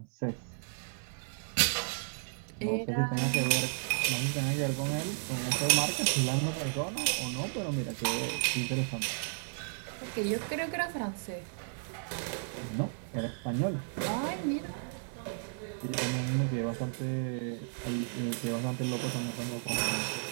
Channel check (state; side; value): silent; left; 55 dB below the other